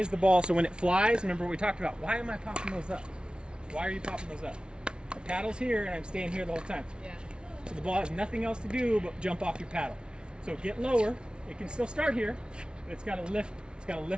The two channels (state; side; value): late; left; 0.056 ms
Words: the ball, so when it flies, remember what we talked about, why am I popping those up? Why are you popping those up? My paddle's here, and I'm staying here the whole time. Yeah. So the ball has nothing else to do but jump off your paddle. So get lower. It can still start here, but it's got to lift. It's got to